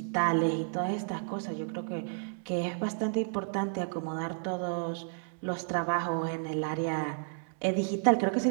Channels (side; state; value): left; silent; digital silence